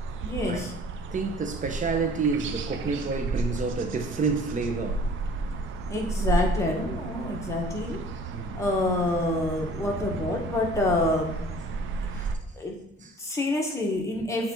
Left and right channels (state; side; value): normal; both; correlation 0.50